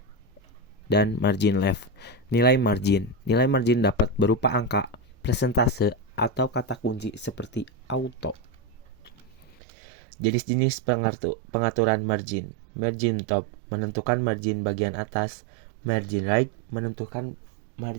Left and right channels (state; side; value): drops out; left; at 9.5 s